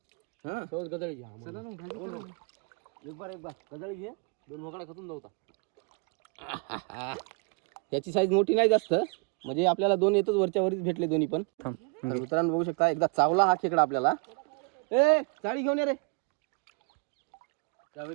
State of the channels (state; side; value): quieter; left; 32.9 dB